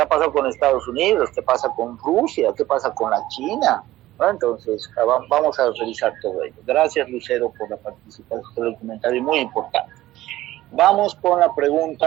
ha pasado con Estados Unidos, qué pasa con Rusia, qué pasa con la China, ¿no? Entonces vamos a revisar todo ello. Gracias, Lucero, por la participación, por el comentario muy importante. Vamos con la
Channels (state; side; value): quieter; left; 15.6 dB